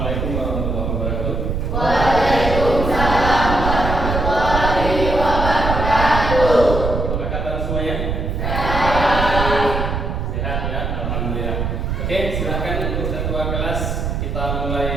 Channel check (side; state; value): right; noise; rumble, 2 dB below the sound